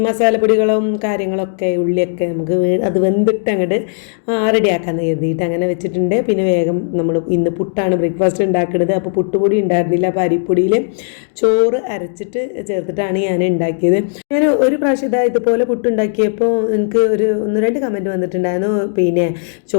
മസാലപ്പൊടികളും കാര്യങ്ങളൊക്കെ ഉള്ളിയൊക്കെ നമുക്ക് അത് വെന്തിട്ട് അങ്ങോട്ട് റെഡിയാക്കാമെന്ന് കരുതിയിട്ട് അങ്ങനെ വെച്ചിട്ടുണ്ട്. പിന്നെ വേഗം നമ്മൾ ഇന്ന് പുട്ടാണ് ബ്രേക്ക്ഫാസ്റ്റ് ഉണ്ടാക്കുന്നത്. അപ്പോൾ പുട്ടുപൊടി ഉണ്ടായിരുന്നില്ല. അപ്പോൾ അരിപ്പൊടിയിൽ ചോറ് അരച്ചിട്ട് ചേർത്തിട്ടാണ് ഞാൻ ഉണ്ടാക്കിയത്. ഞാൻ ഒരു പ്രാവശ്യം ഇതുപോലെ പുട്ടുണ്ടാക്കിയപ്പോൾ എനിക്ക് 1-2 കമൻറ്റ് വന്നിട്ടുണ്ടായിരുന്നു. പിന്നെ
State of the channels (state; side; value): silent; right; digital silence